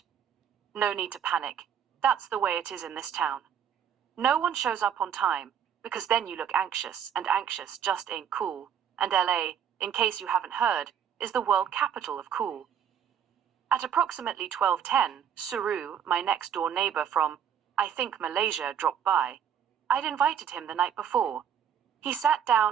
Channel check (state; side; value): quieter; left; 8.5 dB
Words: No need to panic. That's the way it is in this town. No one shows up on time, because then you look anxious, and anxious just ain't cool. And LA, in case you haven't heard, is the world capital of cool. At approximately 12:10, Suru, my next-door neighbor from, I think, Malaysia, dropped by. I'd invited him the night before. He sat